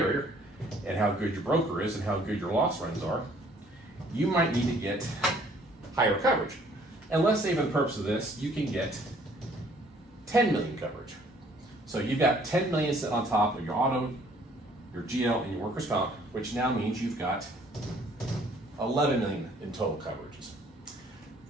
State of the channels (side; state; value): both; normal; correlation 0.59